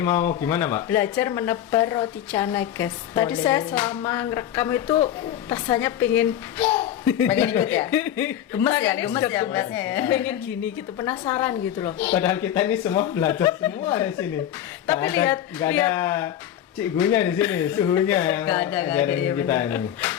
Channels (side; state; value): right; quieter; 11.0 dB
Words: mau gimana, Mbak? Belajar menebar roti canai, guys. Tadi Boleh. saya selama ngerekam itu rasanya pengen Pengen ikut ya? Gemes ya, Tangannya gemes sudah ya beratnya ya. pengen gini gitu, penasaran gitu loh. Padahal kita ini semua belajar semua di sini. Tapi Nggak ada cikgunya di sini, suhunya yang Nggak ada, ajarin iya kita bener. ini.